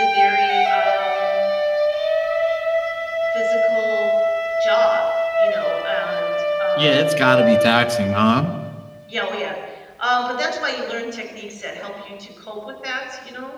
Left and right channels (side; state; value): both; identical; correlation 1.00